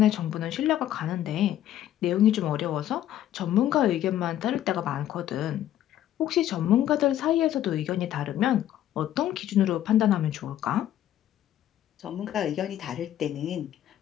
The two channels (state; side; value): quieter; right; 11.9 dB